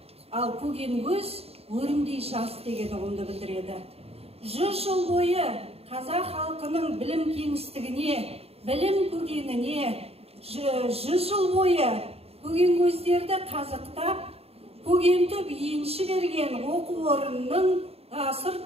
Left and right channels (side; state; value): left; late; 0.29 ms